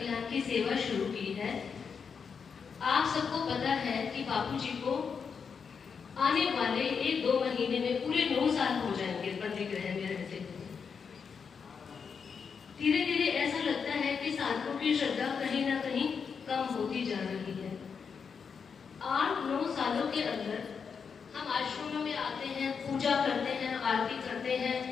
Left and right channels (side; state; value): right; quieter; 6.1 dB